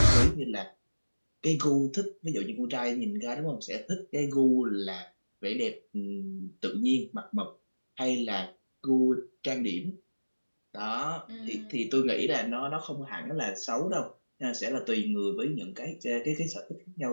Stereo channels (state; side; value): inverted; both; correlation -1.00